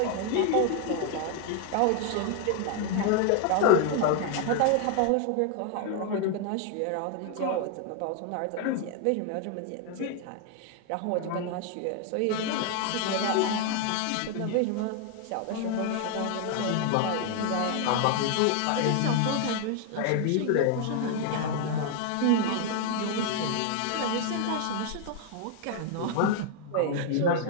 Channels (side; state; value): both; different; correlation 0.00